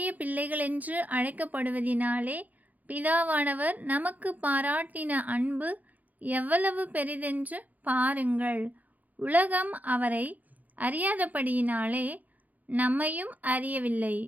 பிள்ளைகள் என்று அழைக்கப்படுவதினாலே பிதாவானவர் நமக்கு பாராட்டின அன்பு எவ்வளவு பெரிதென்று பாருங்கள். உலகம் அவரை அறியாதபடியினாலே நம்மையும் அறியவில்லை.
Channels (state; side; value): late; left; 0.079 ms